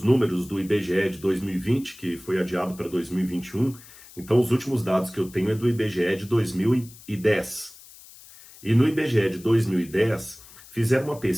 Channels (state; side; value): noise; left; hiss, 20 dB below the sound